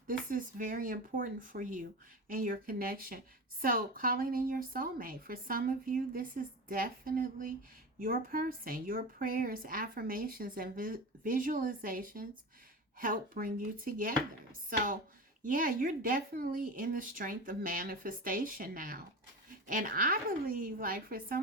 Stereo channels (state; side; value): normal; both; correlation 0.26